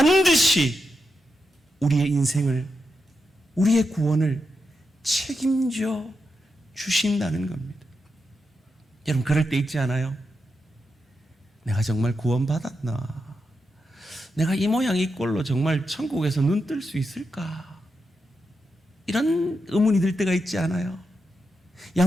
우리의 인생을, 우리의 구원을 책임져 주신다는 겁니다. 여러분, 그럴 때 있지 않아요? 내가 정말 구원받았나? 내가 이 모양 이 꼴로 정말 천국에서 눈 뜰 수 있을까? 이런 의문이 들 때가 있지 않아요?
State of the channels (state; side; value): normal; both; correlation 0.86